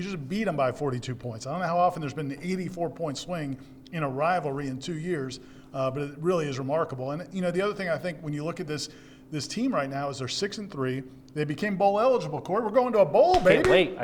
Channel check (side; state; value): both; identical; correlation 1.00